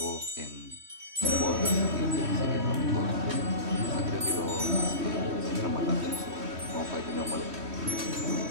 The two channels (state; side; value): late; left; 3.1 ms